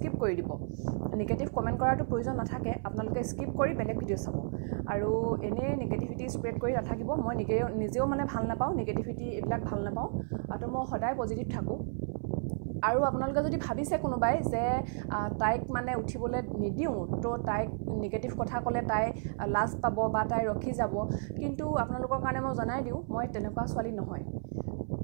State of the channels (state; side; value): silent; left; 56 dB below the other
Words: কৰি দিব। নিগেটিভ কমেণ্ট কৰাটো প্ৰয়োজন নাথাকে, আপোনালোকে স্কিপ কৰি বেলেগ ভিডিঅ' চাব। আৰু এনেই নিগেটিভিটি স্প্ৰেড কৰি নাথাকিব। মই নিজেও মানে ভাল নাপাওঁ, নিগেটিভিটি এইবিলাক ভাল নাপাওঁ, আৰু মই সদায় পজিটিভ থাকোঁ। আৰু আপোনালোকে যদি ভাবিছে কোনোবাই যে তাইক মানে উঠিবলৈ নিদিওঁ, তো তাইক নিগেটিভ কথা ক'লে তাই লাজ পাব বা তাই ৰখি যাব, কিন্তু আপোনালোকৰ কাৰণে মই জনাই দিওঁ, মই তেনেকুৱা ছোৱালী নহয়।